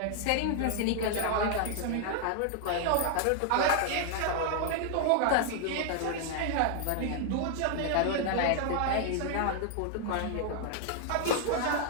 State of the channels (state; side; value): different; both; correlation 0.00